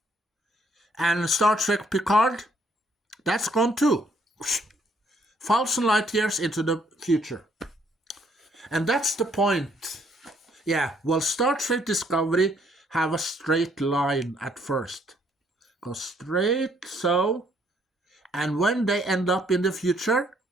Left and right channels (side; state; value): both; normal; correlation 0.68